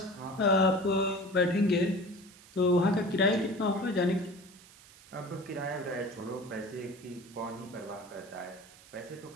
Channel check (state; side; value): noise; right; hiss, 22 dB below the sound